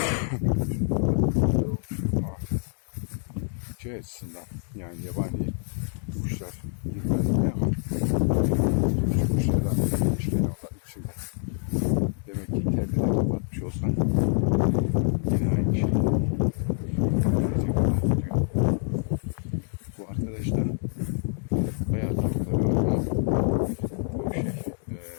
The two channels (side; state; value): right; silent; 57 dB below the other